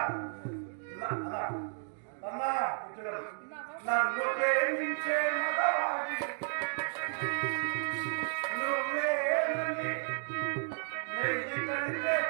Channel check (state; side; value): silent; left; digital silence